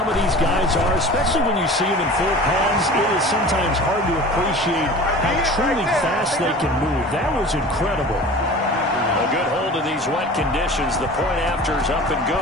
of these guys are, especially when you see them in full pads, it is sometimes hard to appreciate how truly fast they can move. That was incredible. A good hold of these wet conditions. The point after is up and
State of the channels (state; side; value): normal; both; correlation 0.39